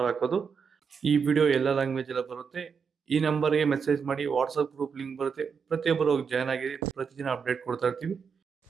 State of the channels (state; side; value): quieter; left; 6.1 dB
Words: ಹಾಕೋದು. ಈ ವಿಡಿಯೋ ಎಲ್ಲ ಲ್ಯಾಂಗ್ವೇಜ್ ಎಲ್ಲ ಬರುತ್ತೆ. ಈ ನಂಬರ್ಗೆ ಮೆಸೇಜ್ ಮಾಡಿ, ವಾಟ್ಸ್ಆಪ್ ಗ್ರೂಪ್ ಲಿಂಕ್ ಬರುತ್ತೆ, ಪ್ರತಿಯೊಬ್ಬರು ಜಾಯ್ನ್ ಆಗಿರಿ. ಪ್ರತಿದಿನ ಅಪ್ಡೇಟ್ ಕೊಡ್ತಾ ಇರ್ತೀವಿ.